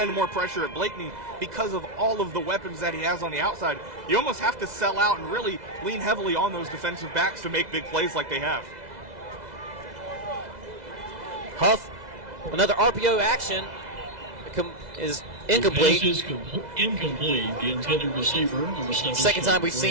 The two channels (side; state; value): left; late; 2.0 ms